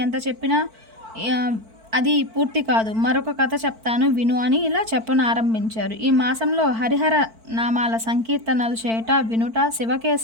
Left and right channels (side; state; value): left; late; 4.5 ms